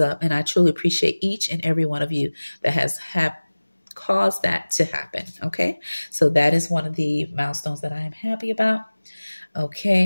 and I truly appreciate each and every one of you that has caused that to happen. Okay, so that is one of the milestones that I am happy about.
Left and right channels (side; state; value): both; inverted; correlation -1.00